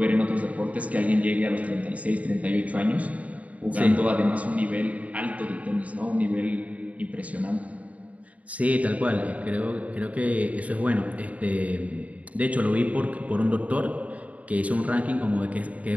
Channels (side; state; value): left; late; 0.069 ms